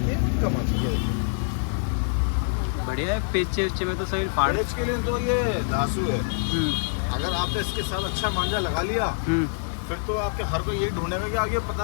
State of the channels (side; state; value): right; silent; digital silence